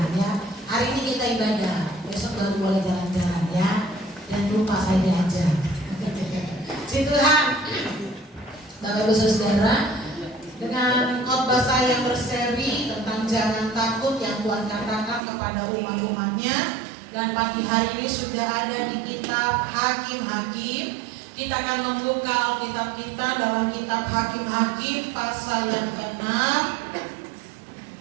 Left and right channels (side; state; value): left; drops out; at 15.2 s